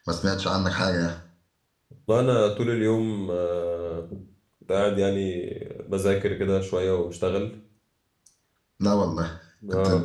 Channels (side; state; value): both; identical; correlation 1.00